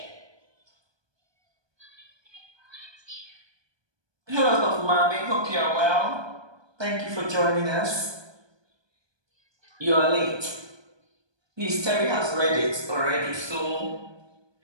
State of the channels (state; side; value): late; left; 1.2 ms